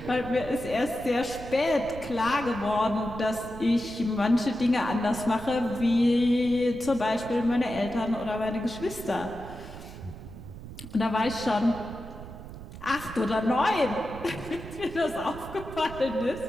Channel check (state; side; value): noise; right; rumble, 13 dB below the sound